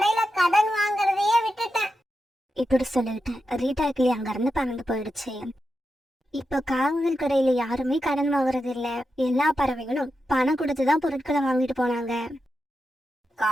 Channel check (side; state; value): both; normal; correlation 0.89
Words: கடன் வாங்குறதையே விட்டுட்டேன். இப்படி சொல்லிட்டு ரீட்டா கிளி அங்க இருந்து பறந்து போயிடுச்சு. இப்ப காவல் கடையில யாருமே கடன் வாங்குறது இல்ல. எல்லா பறவைகளும் பணம் கொடுத்துதான் பொருட்களை வாங்கிட்டு போனாங்க.